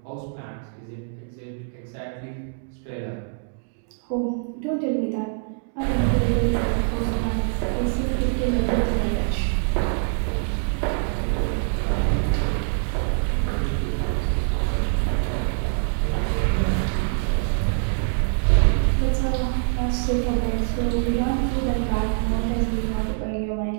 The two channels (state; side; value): silent; left; digital silence